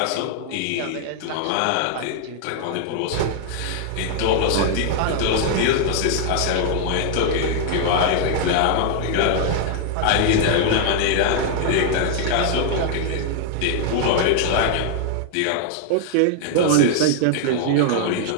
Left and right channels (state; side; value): different; both; correlation 0.00